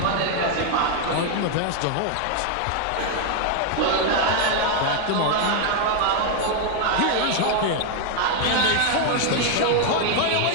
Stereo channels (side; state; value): both; different; correlation 0.00